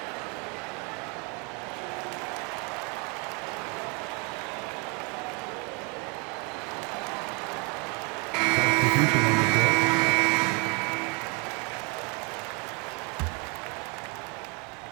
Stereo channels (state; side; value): quieter; left; 32.5 dB